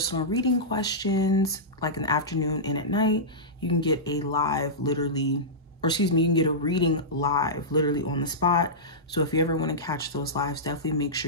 reading questions like in the afternoon and at night. You can get a live literally, or excuse me, you can get a reading live literally on the spot. So if you ever want to catch those lives, definitely make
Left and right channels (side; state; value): both; normal; correlation -0.14